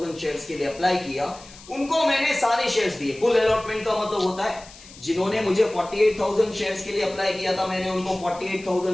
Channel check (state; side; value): noise; left; hiss, 20 dB below the sound